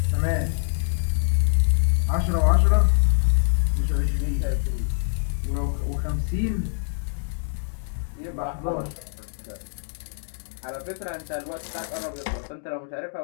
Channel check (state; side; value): silent; right; digital silence